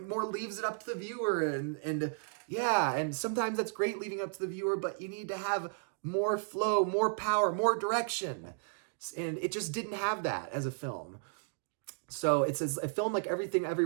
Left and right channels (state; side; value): silent; left; digital silence